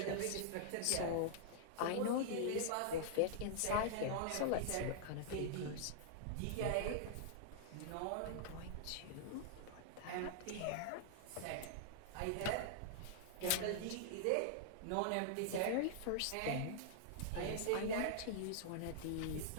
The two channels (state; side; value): different; both; correlation -0.01